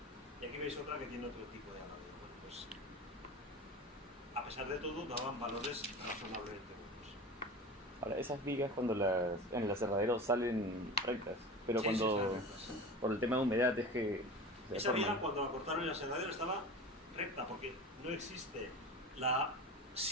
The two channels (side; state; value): both; normal; correlation 0.32